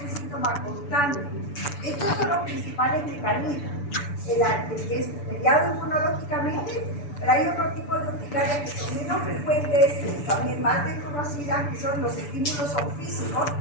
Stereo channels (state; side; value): late; right; 6.9 ms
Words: un síntoma constante. Estos son los principales mecanismos. El que es mediado inmunológicamente, pero hay otro tipo de urticarias que son menos frecuentes, también más desconocidas, que son los estímulos son físicos,